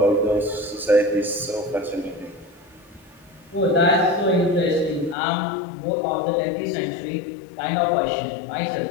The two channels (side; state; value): right; drops out; at 5.2 s